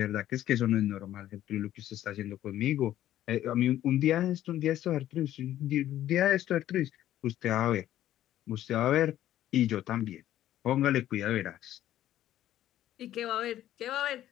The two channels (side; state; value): right; quieter; 12.7 dB